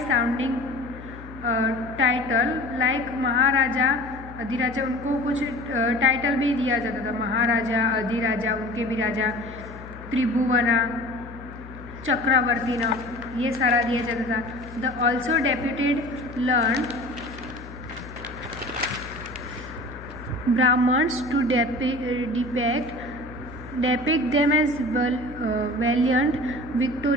title like maharaja adhiraja. उनको कुछ टाइटल भी दिया जाता था, महाराजा अधिराजा, उनके भी राजा, त्रिभुवना, चक्रवर्ती नाम, ये सारा दिया जाता था. The also deputed learn Brahmins to depict them as valiant,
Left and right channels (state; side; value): noise; left; hum, 15 dB below the sound